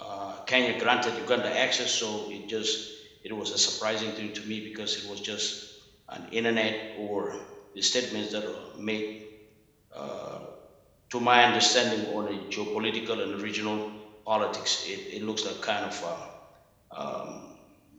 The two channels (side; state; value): both; identical; correlation 1.00